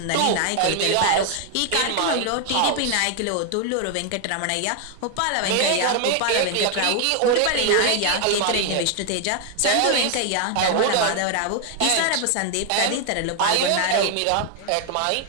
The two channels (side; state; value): both; different; correlation 0.00